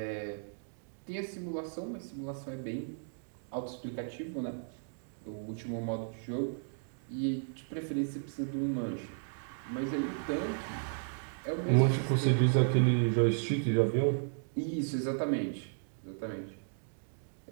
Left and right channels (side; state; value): left; silent; digital silence